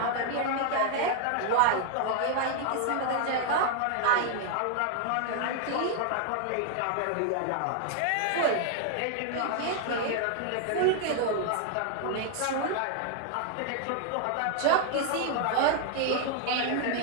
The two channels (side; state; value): both; different; correlation 0.00